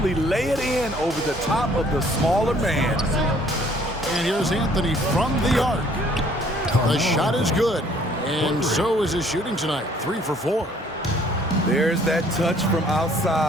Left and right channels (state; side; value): normal; both; correlation 0.60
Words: lay it in over the top of the smaller man. And here's Anthony from the arc. The shot is good. And so is his shooting tonight. 3 for 4. There's that touch from